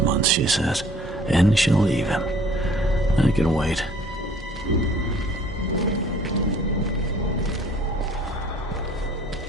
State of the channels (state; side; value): normal; both; correlation 0.55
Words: months, she says, and she'll leave him. I can wait.